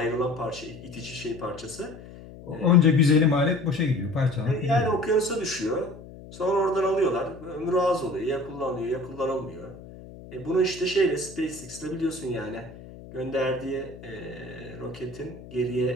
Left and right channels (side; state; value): left; noise; hum, 16 dB below the sound